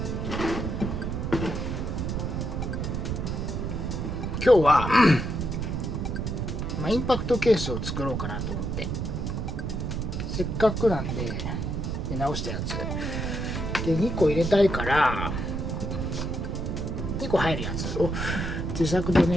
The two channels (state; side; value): noise; right; rumble, 2 dB below the sound